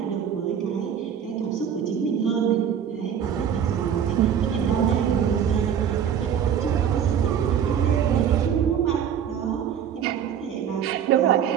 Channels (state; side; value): quieter; left; 8.6 dB